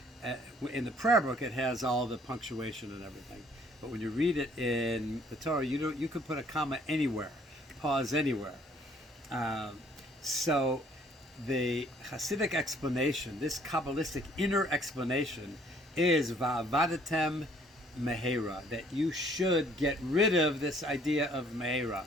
in the prayer book, it has all the punctuation and everything. But when you read it in the Torah, you could put a comma anywhere, pause anywhere. So the Hasidic explanation, this Kabbalistic inner explanation, is va'avadatem mehera, that you should get rid of this idea of mehera.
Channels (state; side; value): normal; both; correlation 0.60